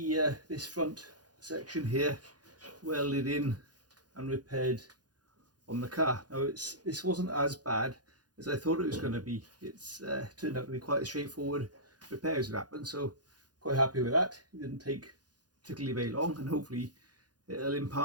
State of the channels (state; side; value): late; left; 0.69 ms